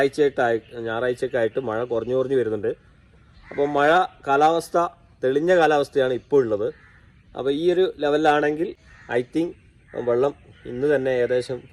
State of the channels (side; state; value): both; identical; correlation 1.00